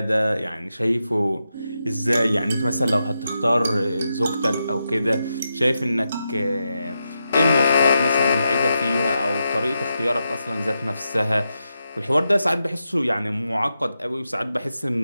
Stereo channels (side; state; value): both; inverted; correlation -0.87